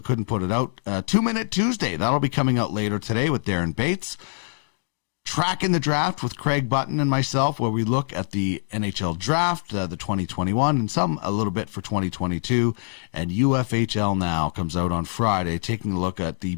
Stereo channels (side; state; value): right; silent; digital silence